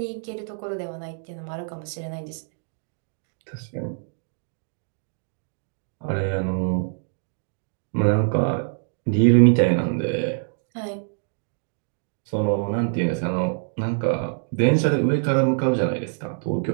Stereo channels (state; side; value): silent; left; digital silence